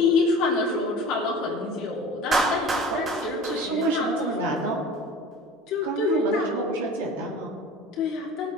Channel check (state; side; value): normal; both; correlation 0.40